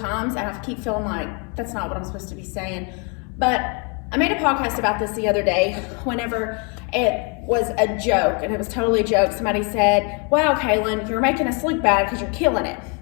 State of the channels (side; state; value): right; quieter; 35.2 dB